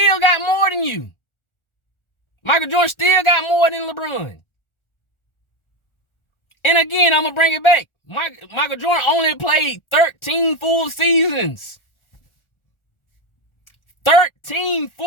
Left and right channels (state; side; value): late; right; 1.4 ms